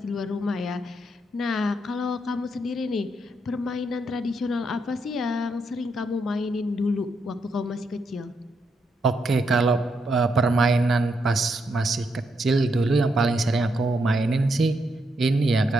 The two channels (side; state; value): both; normal; correlation 0.80